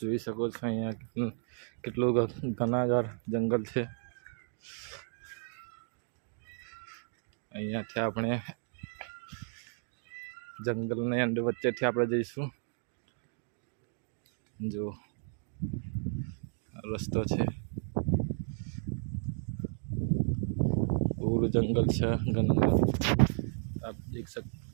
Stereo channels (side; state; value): left; silent; 55 dB below the other